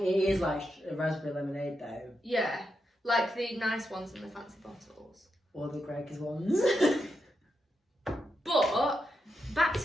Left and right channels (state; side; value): normal; both; correlation 0.85